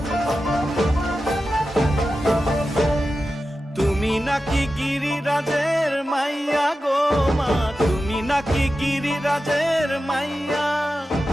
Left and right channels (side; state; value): both; normal; correlation 0.92